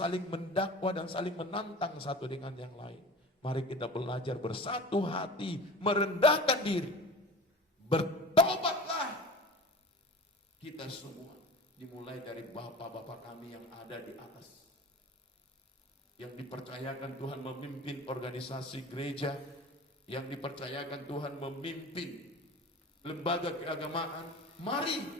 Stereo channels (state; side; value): normal; both; correlation 0.37